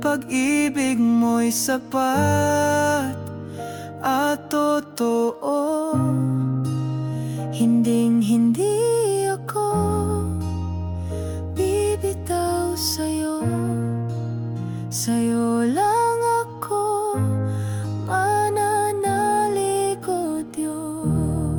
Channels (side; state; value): both; identical; correlation 1.00